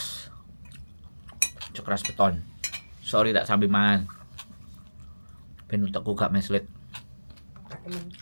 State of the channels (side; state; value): both; inverted; correlation -1.00